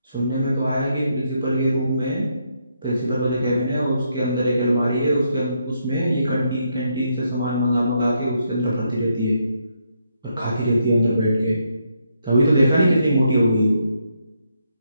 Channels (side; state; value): both; inverted; correlation -0.77